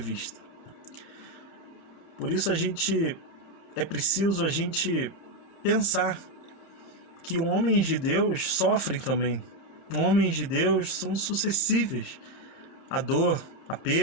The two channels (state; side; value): late; right; 30 ms